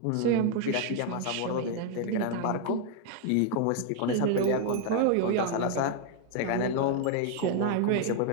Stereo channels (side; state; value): both; different; correlation 0.00